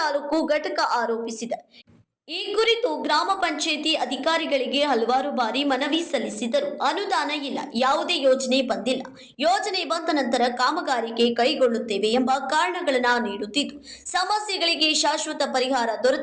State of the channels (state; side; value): identical; both; correlation 1.00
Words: ತಾಲೂಕು ಘಟಕ ಆರೋಪಿಸಿದೆ. ಈ ಕುರಿತು ಗ್ರಾಮ ಪಂಚಾಯಿತಿ ಅಧಿಕಾರಿಗಳಿಗೆ ಹಲವಾರು ಬಾರಿ ಮನವಿ ಸಲ್ಲಿಸಿದರೂ ಅನುದಾನ ಇಲ್ಲ, ಯಾವುದೇ ಯೋಜನೆ ಬಂದಿಲ್ಲ, ಯೋಜನೆ ಬಂದ ನಂತರ ಕಾಮಗಾರಿಗೆ ಕೈಗೊಳ್ಳುತ್ತೇವೆ ಎಂಬ ಕಾರಣಗಳನ್ನು ನೀಡುತ್ತಿದ್ದು ಸಮಸ್ಯೆಗಳಿಗೆ ಶಾಶ್ವತ ಪರಿಹಾರ